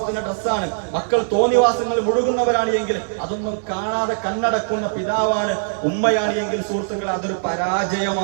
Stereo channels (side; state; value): left; silent; digital silence